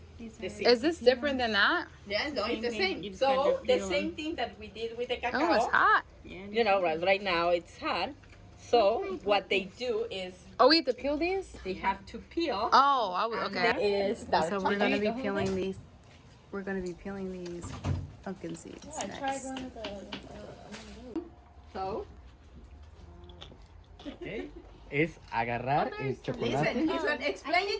The seed. is this different than that? Yes, no, it's the thing. You same. just kind So of the peel same thing that we did with the cacao. Oh, it's hot. You know, right now it's hot. So what they do is Oh, we have to peel these? they have to peel. Oh, okay. Is dark So we're gonna be chocolate. peeling these. We're gonna be peeling these pumpkin seeds next. So Okay. Es agarrar el chocolate. listen, he's gonna explain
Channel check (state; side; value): identical; both; correlation 1.00